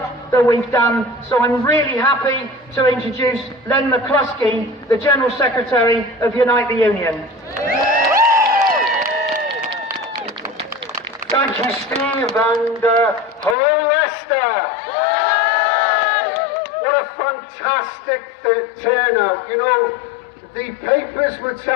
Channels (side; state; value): right; drops out; at 13.6 s